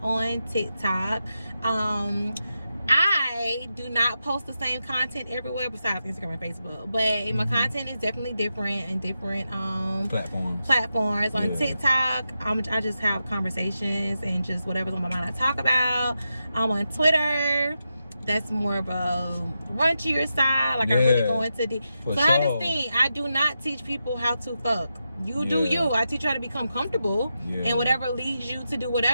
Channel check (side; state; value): both; inverted; correlation -0.88